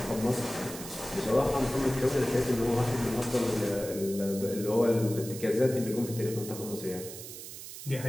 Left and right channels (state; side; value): noise; right; hiss, 11 dB below the sound